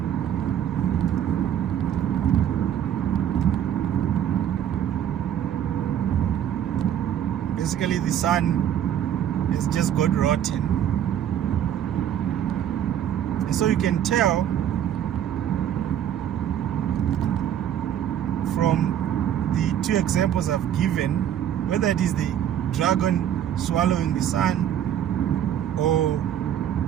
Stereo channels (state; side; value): quieter; left; 10.2 dB